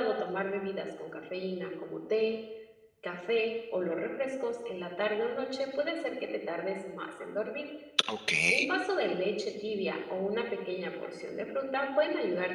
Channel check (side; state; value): both; identical; correlation 1.00